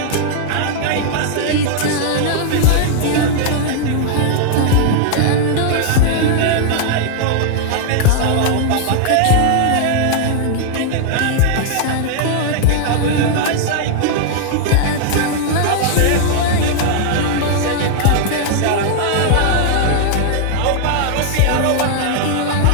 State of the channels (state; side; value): different; both; correlation 0.00